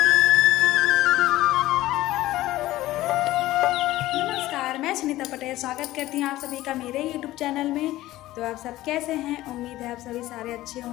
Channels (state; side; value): quieter; right; 16.2 dB